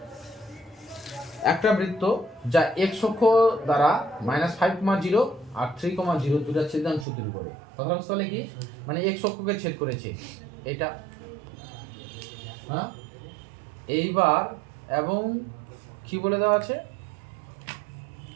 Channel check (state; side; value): drops out; left; at 7.1 s